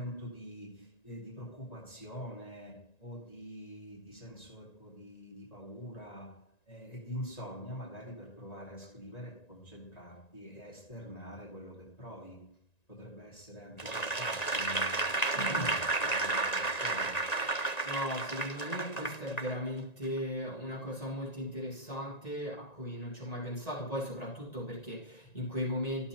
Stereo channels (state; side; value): late; right; 1.9 ms